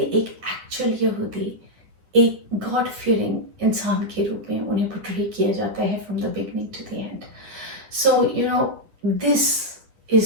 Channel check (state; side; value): late; left; 10 ms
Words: एक्चुअल यहूदी एक गॉड फियरिंग इंसान के रूप में उन्हें पोर्ट्रे किया जाता है from the beginning to the end. So this